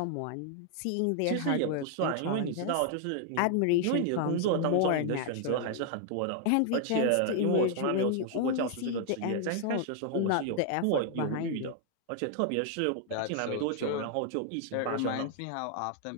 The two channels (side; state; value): both; different; correlation 0.00